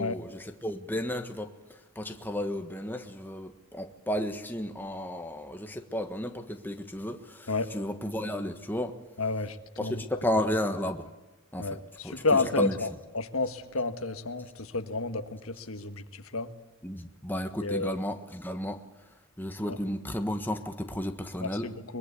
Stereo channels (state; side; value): normal; both; correlation 0.21